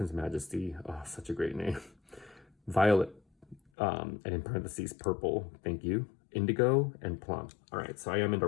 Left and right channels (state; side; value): drops out; right; at 3.6 s